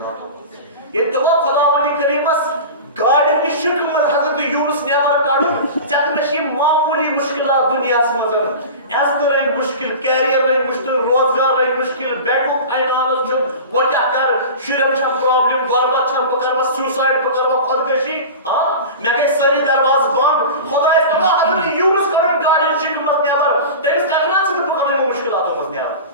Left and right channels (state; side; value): inverted; both; correlation -0.32